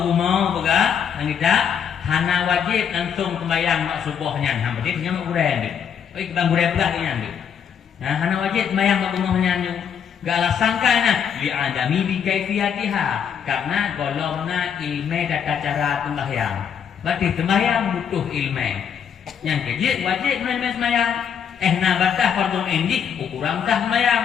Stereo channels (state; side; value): quieter; right; 7.8 dB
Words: mau boga, nang kita hana wajib langsung sembahyang mak subuhnya, hang berarti nya mak guren dik. Oi bang guren pula nya dik. Nah, hana wajib sembahyang mak subuhnya nya. Gak ala sangkana li adami bi kaifiyatiha, karena golongna ilmu data cara sembahyang. Berarti sembahyang butuh ilmu. Yang kejit wajib menemui sembahyang. Na batah fardu ain ukuran tah sembahyang.